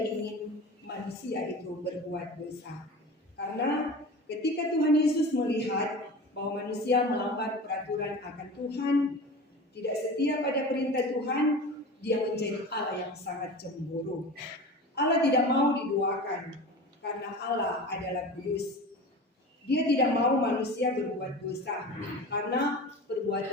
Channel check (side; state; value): both; normal; correlation 0.33